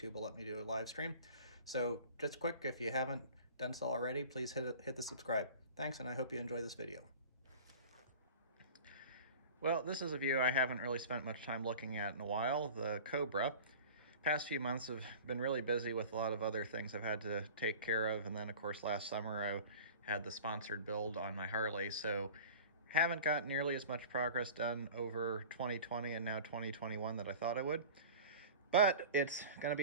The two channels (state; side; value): inverted; both; correlation -0.40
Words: will let me do a live stream. So just quick, if you haven't done so already, please hit the subscribe. Thanks, and I hope you enjoy this video. Well, this is a view I haven't really spent much time looking at in a while, the Cobra. Past few months have been really busy with a lot of other things I've had to take care of, and then of course last summer I had the sponsored build on my Harley, so haven't got nearly as much progress done over 2020 and now 2021 that I thought I would. But it's going to